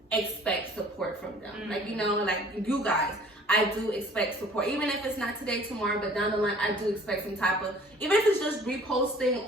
expect support from them. Like, you know, like you guys, I do expect support. Even if it's not today, tomorrow, but down the line, I do expect some type of, even if it's just reposting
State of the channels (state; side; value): normal; both; correlation 0.52